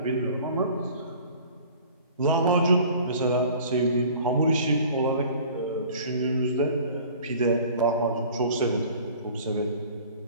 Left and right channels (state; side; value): inverted; both; correlation -0.47